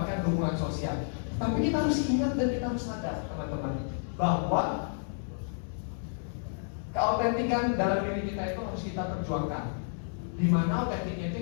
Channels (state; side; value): silent; right; 57 dB below the other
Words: dukungan sosial. Tapi kita harus ingat dan kita harus sadar teman-teman bahwa keautentikan dalam diri kita itu harus kita perjuangkan. Dimana autentiknya